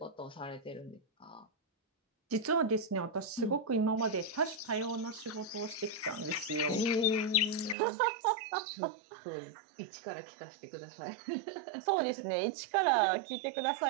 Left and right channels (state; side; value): drops out; left; at 7.8 s